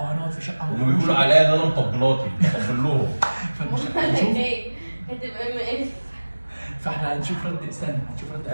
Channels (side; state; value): both; inverted; correlation -1.00